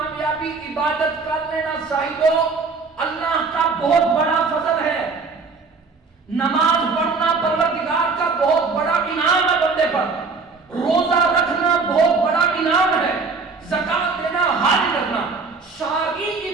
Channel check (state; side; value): quieter; left; 4.5 dB